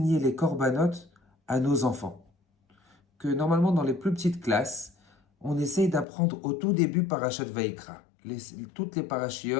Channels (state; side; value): drops out; right; at 6.1 s